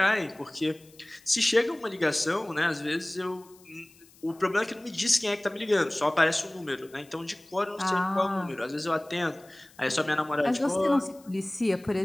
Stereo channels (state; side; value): noise; left; hiss, 27 dB below the sound